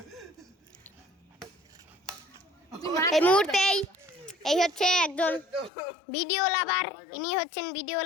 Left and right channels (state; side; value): drops out; right; at 5.7 s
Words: এই মুহূর্তে এই হচ্ছে একজন ভিডিও লাভার, ইনি হচ্ছেন ভিডিও